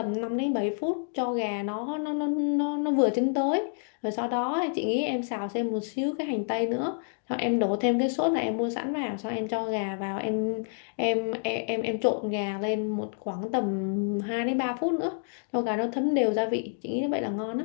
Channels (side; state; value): right; silent; 59 dB below the other